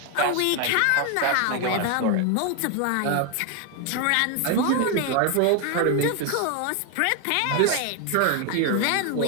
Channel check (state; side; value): different; both; correlation 0.01